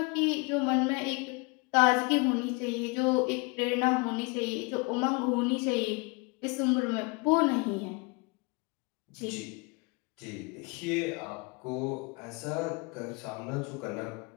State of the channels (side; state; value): right; quieter; 29.3 dB